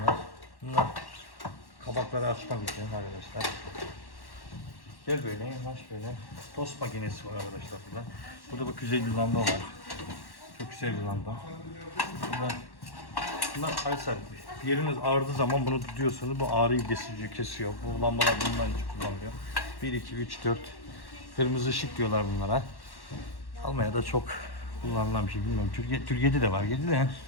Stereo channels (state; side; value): late; right; 1.1 ms